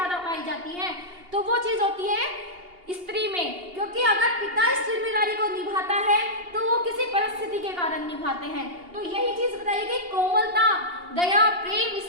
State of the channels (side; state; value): left; late; 2.8 ms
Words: पाई जाती हैं, तो वो चीज होती है स्त्री में। क्योंकि अगर पिता इस जिम्मेदारी को निभाता है तो वो किसी परिस्थिति के कारण निभाते हैं। तो यही चीज बताइए कि कोमलता, दया, प्रेम,